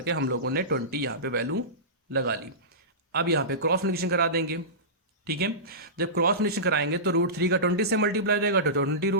हम लोगों ने 20 यहाँ पे वैल्यू लगा ली। अब यहाँ पे क्रॉस मल्टीप्लिकेशन करा देंगे। ठीक है। जब क्रॉस मल्टीप्लिकेशन कराएंगे तो √3 का 20 से मल्टीप्लाई हो जाएगा तो 20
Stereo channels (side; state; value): both; normal; correlation -0.20